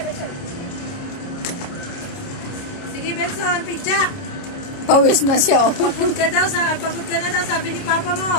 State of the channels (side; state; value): right; late; 29 ms